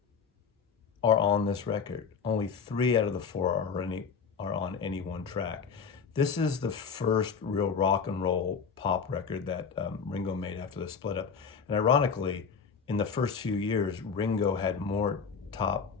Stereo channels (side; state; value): right; quieter; 6.1 dB